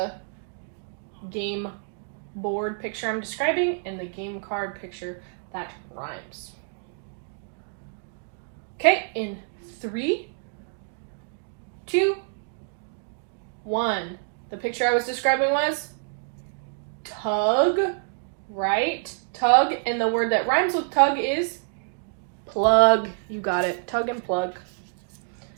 game board picture I'm describing and the game card picture that rhymes. Okay, in 3, 2, 1. The picture I was describing was tug, right? Tug, and the word that rhymes with tug is plug. You got it, tug and plug.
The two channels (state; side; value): silent; left; digital silence